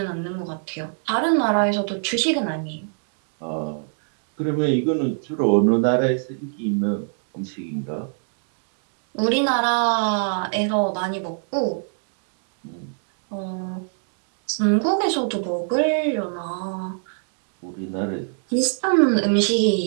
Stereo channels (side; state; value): left; silent; 63 dB below the other